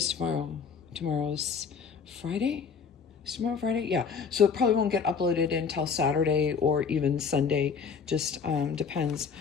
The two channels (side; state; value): right; quieter; 6.0 dB